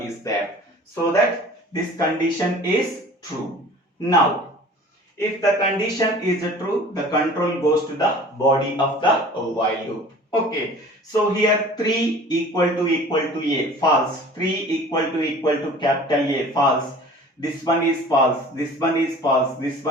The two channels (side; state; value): both; normal; correlation 0.45